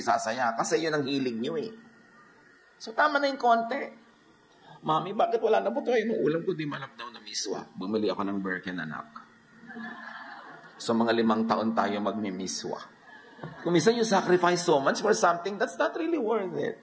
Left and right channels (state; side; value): identical; both; correlation 1.00